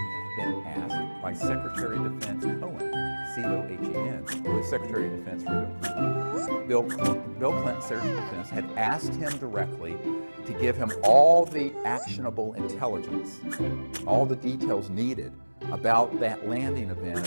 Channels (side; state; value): both; inverted; correlation -1.00